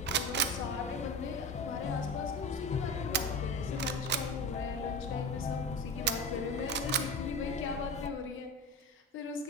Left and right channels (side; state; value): both; normal; correlation 0.28